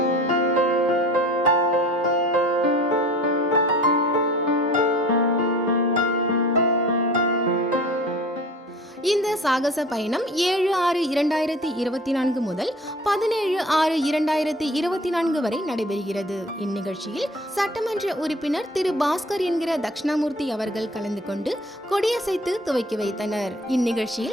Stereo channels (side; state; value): both; normal; correlation 0.44